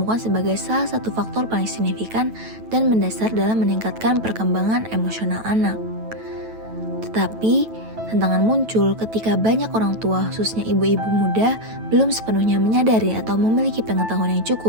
sebagai salah satu faktor paling signifikan dan mendasar dalam meningkatkan perkembangan emosional anak. Tetapi, tantangan muncul ketika banyak orang tua, khususnya ibu-ibu muda, belum sepenuhnya menyadari atau memiliki pengetahuan yang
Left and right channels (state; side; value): late; left; 9.1 ms